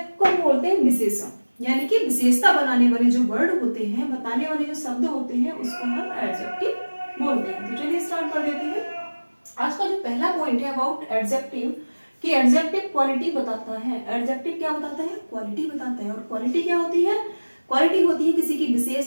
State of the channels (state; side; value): inverted; both; correlation -1.00